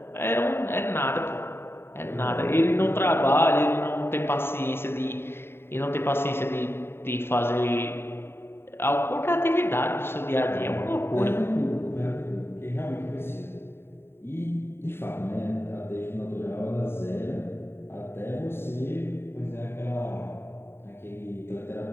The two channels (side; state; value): right; late; 0.11 ms